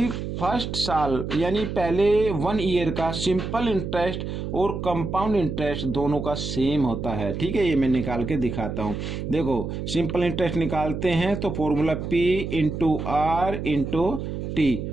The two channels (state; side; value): noise; right; hum, 5 dB below the sound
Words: फर्स्ट साल यानी पहले 1 ईयर का सिंपल इंटरेस्ट और कंपाउंड इंटरेस्ट दोनों का सेम होता है। ठीक है, ये मैं निकाल के दिखाता हूँ। देखो सिंपल इंटरेस्ट निकालते हैं तो formula P into R into T